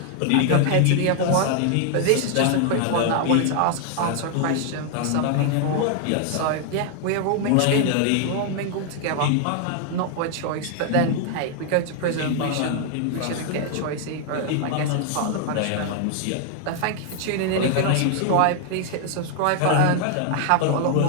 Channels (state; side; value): different; both; correlation 0.00